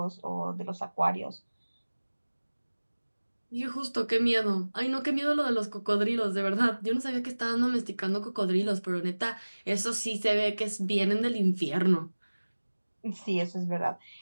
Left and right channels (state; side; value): inverted; both; correlation -1.00